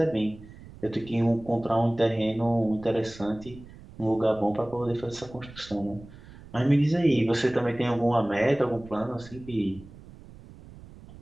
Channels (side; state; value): right; noise; rumble, 19 dB below the sound